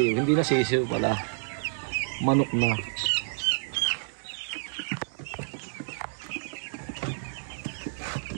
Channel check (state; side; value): silent; left; digital silence